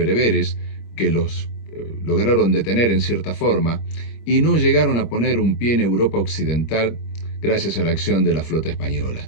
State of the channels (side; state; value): right; late; 25 ms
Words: que los lograron detener en cierta forma y no llegaron a poner un pie en Europa occidental gracias a la acción de la flota española.